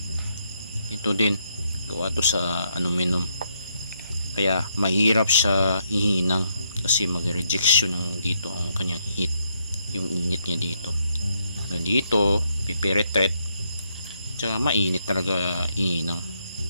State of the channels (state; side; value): inverted; both; correlation -0.76